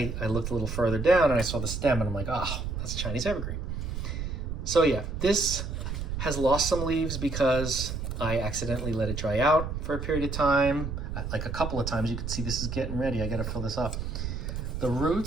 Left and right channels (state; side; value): noise; right; rumble, 4 dB below the sound